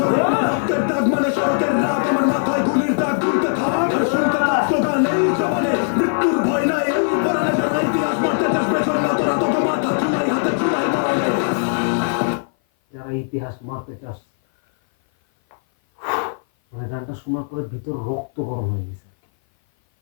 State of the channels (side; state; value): right; silent; 57 dB below the other